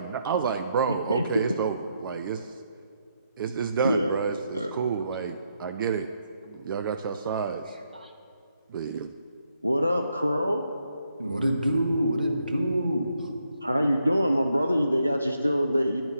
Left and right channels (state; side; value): inverted; both; correlation -0.78